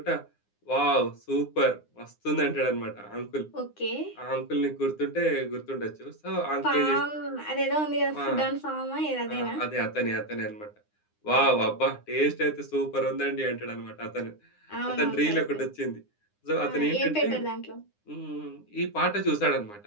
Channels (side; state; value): right; late; 9.8 ms